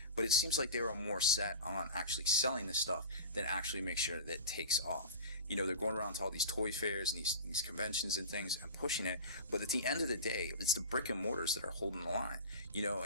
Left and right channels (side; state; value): both; inverted; correlation -0.31